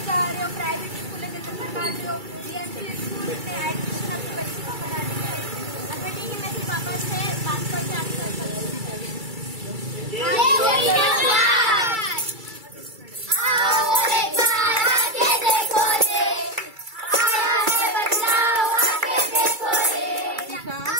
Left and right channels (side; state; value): left; late; 2.3 ms